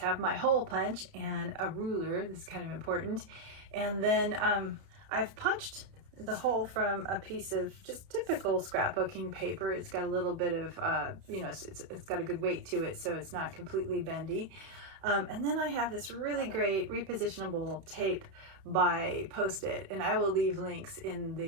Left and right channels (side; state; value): left; late; 31 ms